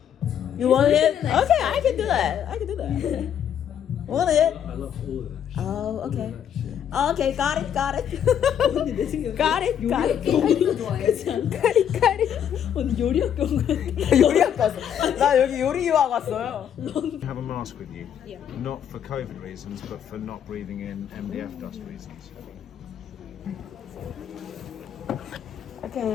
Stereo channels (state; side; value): quieter; right; 9.2 dB